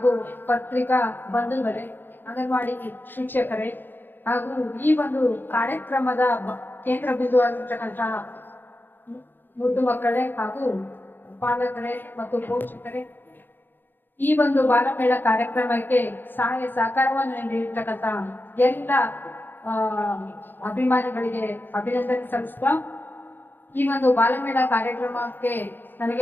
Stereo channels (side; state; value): right; late; 0.094 ms